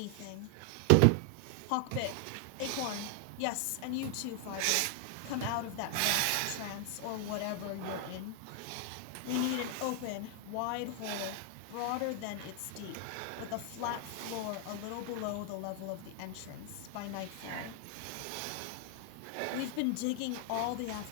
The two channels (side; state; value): both; different; correlation 0.00